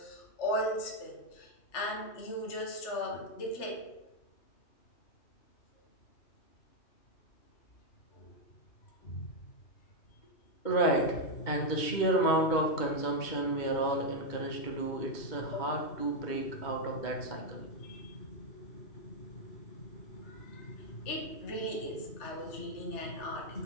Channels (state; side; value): late; right; 2.2 ms